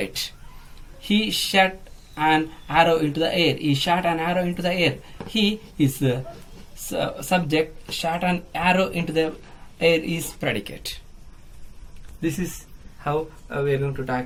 He shot an arrow into the air. He shot an arrow into the air. He is subject, shot an arrow into the air is predicate. This is how we are going to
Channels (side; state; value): both; identical; correlation 1.00